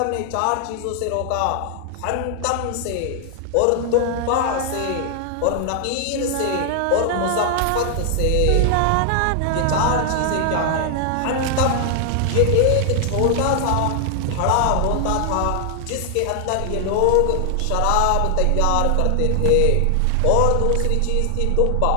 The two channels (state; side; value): different; both; correlation 0.00